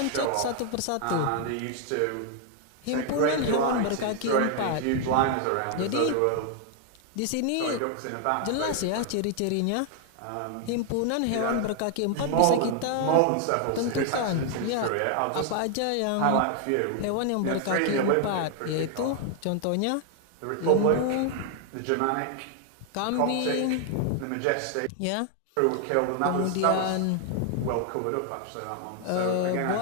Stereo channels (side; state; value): both; different; correlation 0.00